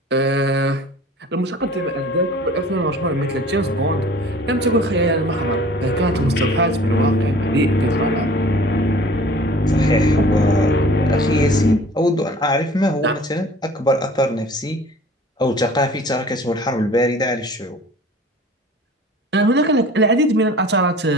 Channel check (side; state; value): both; normal; correlation 0.47